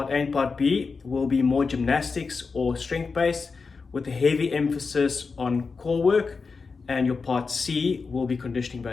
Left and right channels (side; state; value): right; quieter; 4.7 dB